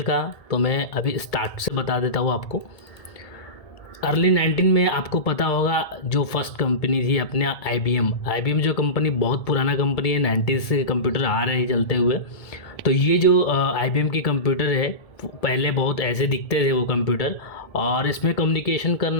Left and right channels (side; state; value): right; late; 1.7 ms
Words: का। तो मैं अभी स्टार्ट से बता देता हूँ आपको। अर्ली 19 में आपको पता होगा जो फर्स्ट कंपनी थी अपने आईबीएम जो कंपनी बहुत पुराना कंपनी है, 90s से कंप्यूटर आ रहे हैं चलते हुए। तो ये जो आईबीएम की कंप्यूटर है, पहले बहुत ऐसे दिखते थे वो कंप्यूटर, और इसमें कम्युनिकेशन